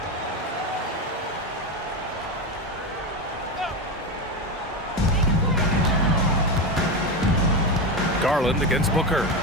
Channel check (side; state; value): both; normal; correlation 0.16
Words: Garland against Booker.